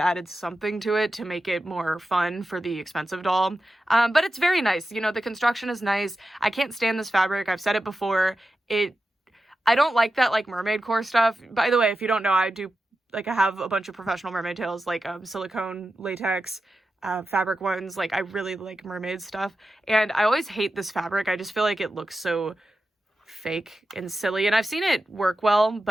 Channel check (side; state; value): both; normal; correlation 0.92